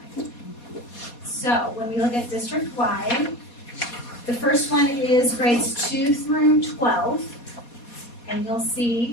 tonight. So when we look at district-wide, the first one is grades 2 through 12. And you'll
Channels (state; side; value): late; right; 4.2 ms